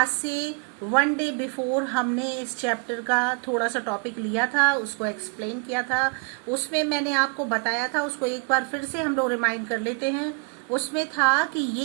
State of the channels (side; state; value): left; quieter; 34.9 dB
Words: से 1 डे बिफोर हमने इस चैप्टर का थोड़ा सा टॉपिक लिया था, उसको एक्सप्लेन किया था. उसमें मैंने आपको बताया था, उसको एक बार फिर से हम लोग रिमाइंड कर लेते हैं. उसमें था कि